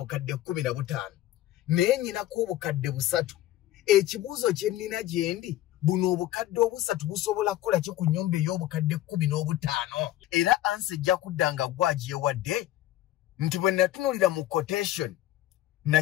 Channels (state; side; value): quieter; right; 14.2 dB